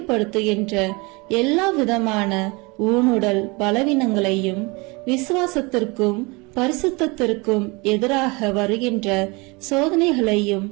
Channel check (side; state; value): left; quieter; 26.8 dB